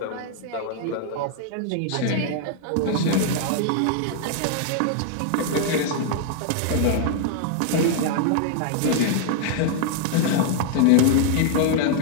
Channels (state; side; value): different; both; correlation 0.00